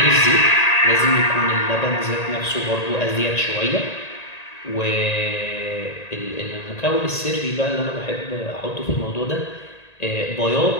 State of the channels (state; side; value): late; right; 1.9 ms